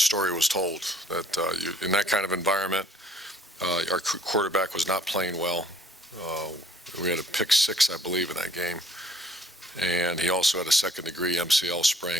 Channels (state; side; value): normal; both; correlation 0.60